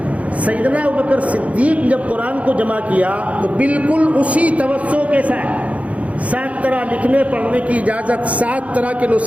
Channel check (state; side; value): late; left; 0.066 ms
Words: سیدنا ابوبکر صدیق جب قرآن کو جمع کیا تو بالکل اسی توسع کے ساتھ 7 طرح لکھنے پڑھنے کی اجازت، 7 طرح کے